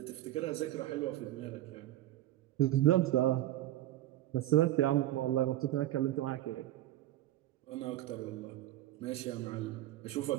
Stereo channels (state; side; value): quieter; left; 14.5 dB